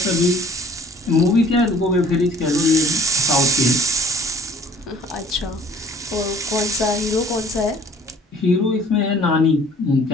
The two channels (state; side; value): normal; both; correlation 0.54